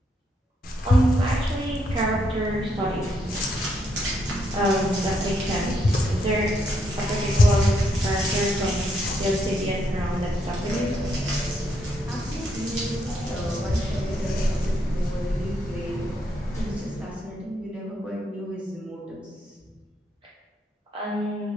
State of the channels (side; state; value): both; normal; correlation 0.76